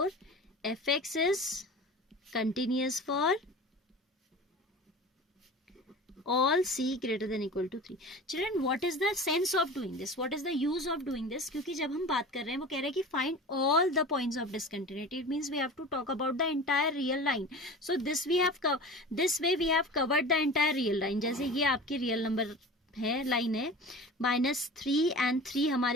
fx is continuous for all c greater than equal to 3. Children, what is the sense of doing this? What is the use of doing this? क्योंकि जब हम बात कर रहे हैं वो कह रहे हैं कि find all the points of discontinuity. It means we have to talk about the entire real line. So this way we have covered the entire real line. जैसे ये आपकी रियल नंबर है, लाइन है, -3 and 3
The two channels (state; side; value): normal; both; correlation 0.36